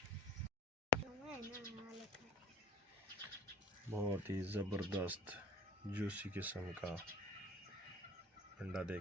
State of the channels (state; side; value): normal; both; correlation 0.44